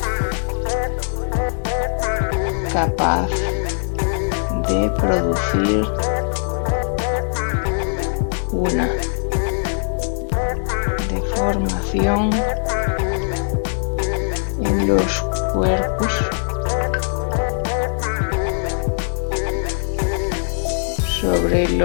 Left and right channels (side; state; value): right; silent; digital silence